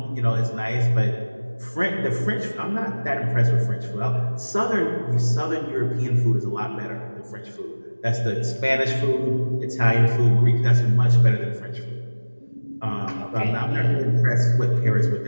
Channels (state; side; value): inverted; both; correlation -1.00